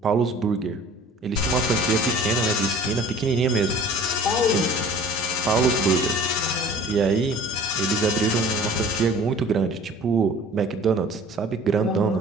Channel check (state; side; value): normal; both; correlation 0.47